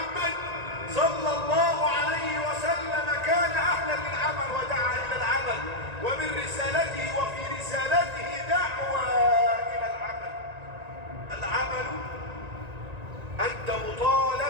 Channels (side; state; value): left; late; 1.9 ms